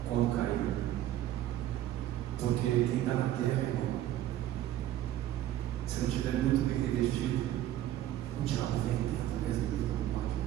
quando cair. Porque quem está na terra, irmão, se não estiver muito bem revestido, o diabo vem dentro mesmo que não pode.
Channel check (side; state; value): left; quieter; 12.9 dB